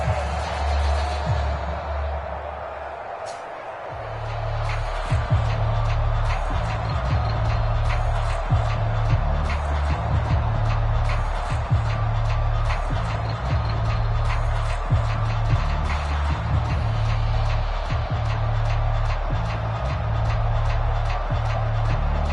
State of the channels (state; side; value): identical; both; correlation 1.00